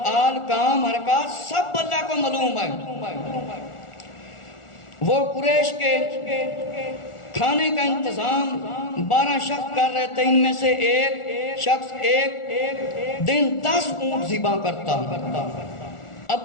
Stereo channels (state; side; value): late; right; 1.4 ms